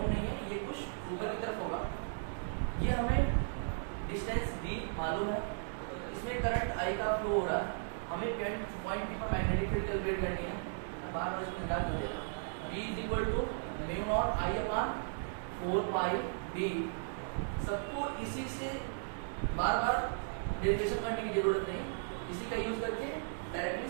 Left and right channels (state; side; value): silent; left; digital silence